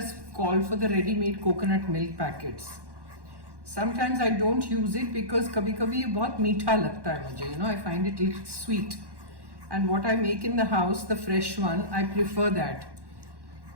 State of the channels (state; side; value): late; left; 1.1 ms